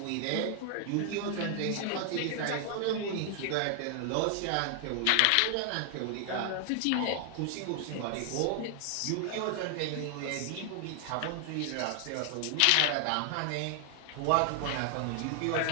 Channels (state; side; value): different; both; correlation 0.00